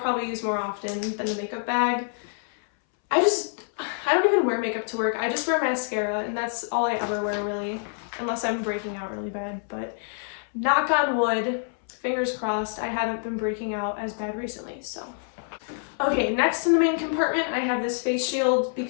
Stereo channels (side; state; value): right; silent; 61 dB below the other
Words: use more often than the makeup bag. I don't even wear makeup to work. I just wear mascara, and that's all I ever wear, really, unless I'm breaking out really bad. But knock on wood, fingers crossed, I haven't been breaking out as bad recently, so. Okay, next in the main compartment, I have this face shield